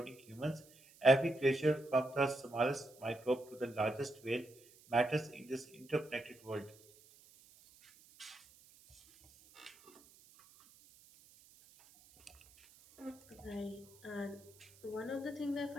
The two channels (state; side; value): noise; right; hiss, 25 dB below the sound